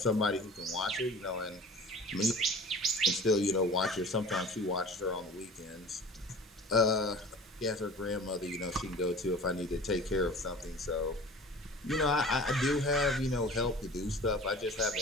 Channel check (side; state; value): both; normal; correlation 0.42